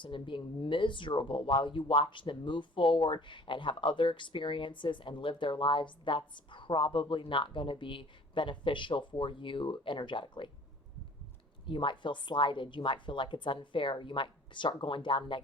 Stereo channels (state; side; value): normal; both; correlation 0.50